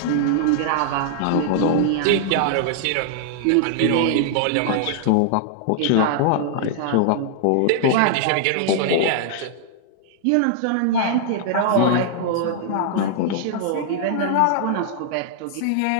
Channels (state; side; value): different; both; correlation -0.01